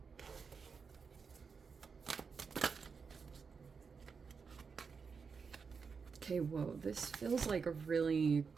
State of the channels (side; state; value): left; quieter; 5.5 dB